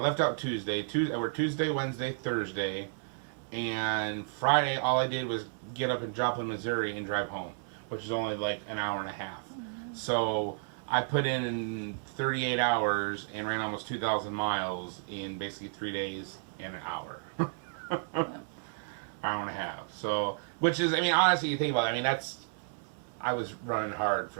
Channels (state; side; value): silent; left; digital silence